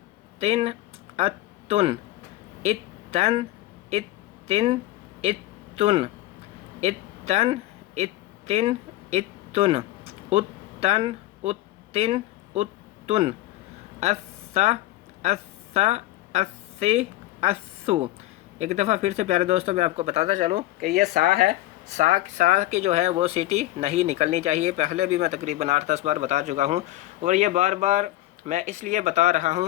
اتن اتن اتن اتن اتن اتن اتن اتن اتن اسا اسا اسی اسو. ایک دفعہ پھر سے پیارے دوستوں میں آپ کو بتاتا چلوں کہ یہ سا ہے, سا کی جو ہے وہ سیٹی نہیں نکلنی چاہیے. پہلے بھی میں تقریباً 8-10 بار بتا چکا ہوں اور یہ بار بار میں اس لیے بتا رہا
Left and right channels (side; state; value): right; quieter; 16.1 dB